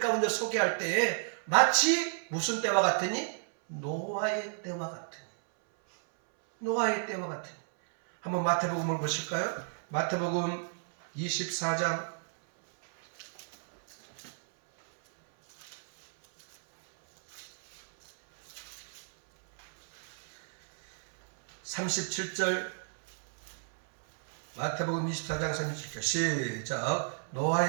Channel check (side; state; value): left; silent; 56 dB below the other